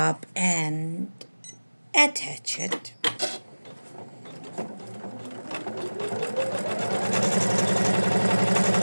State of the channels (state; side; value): inverted; both; correlation -1.00